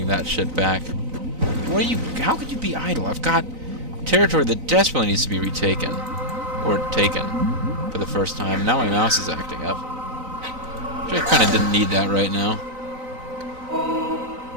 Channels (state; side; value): late; left; 3.9 ms